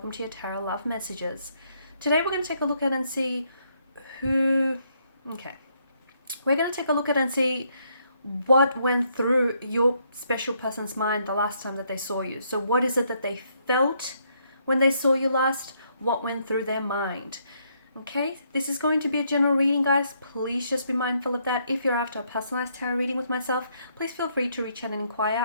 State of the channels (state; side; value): inverted; both; correlation -0.73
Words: to your Tarot Love Messages. Today we're going to take a look at and see who... We're going to take a look at and see what went through your special person's mind the last time that they saw you. So what is it that they felt when they saw you last? What went through their mind? Okay, this is going to be a general reading, guys. Please just be mindful of that. If you're after a personalized tarot reading with myself, please feel free to reach out and